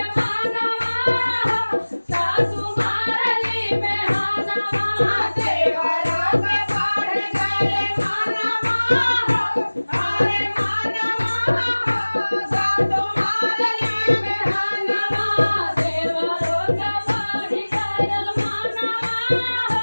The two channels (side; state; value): both; inverted; correlation -1.00